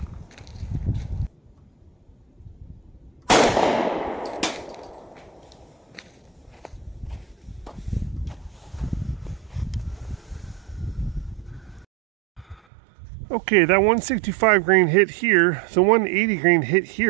Okay, that 165 grain hit here, the 180 grain hit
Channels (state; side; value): drops out; left; at 12.6 s